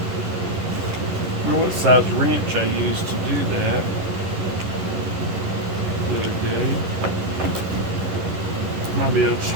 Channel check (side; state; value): left; late; 11 ms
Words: don't know what size wrench I used to do that the other day. Might be able to just